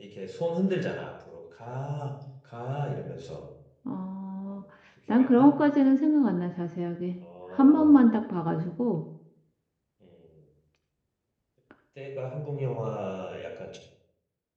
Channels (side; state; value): both; identical; correlation 1.00